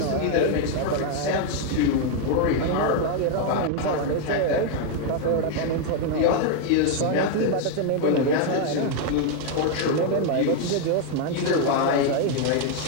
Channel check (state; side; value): different; both; correlation 0.00